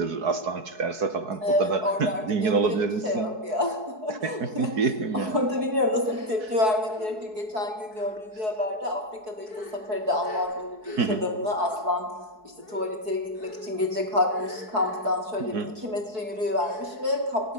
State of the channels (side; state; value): left; late; 4.7 ms